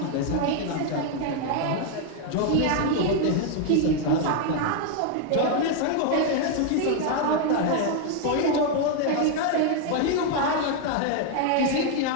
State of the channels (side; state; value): both; different; correlation 0.00